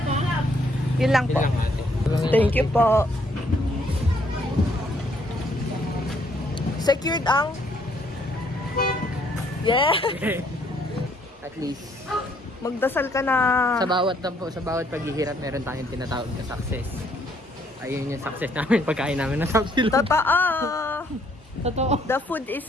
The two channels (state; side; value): normal; both; correlation 0.67